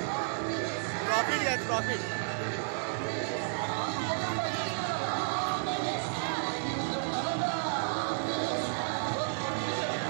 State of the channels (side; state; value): left; silent; 56 dB below the other